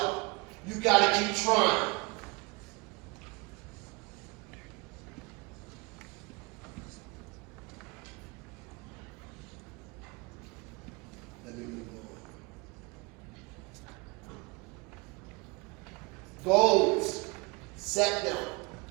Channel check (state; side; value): quieter; left; 27.4 dB